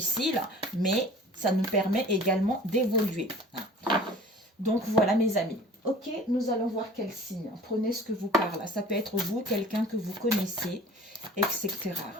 mais ça nous permet également d'évoluer. Donc voilà mes amis. Ok, nous allons voir quel signe. Prenez ce que vous parle. Ça peut être vous, quelqu'un que vous connaissez, etc.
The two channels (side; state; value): both; normal; correlation 0.45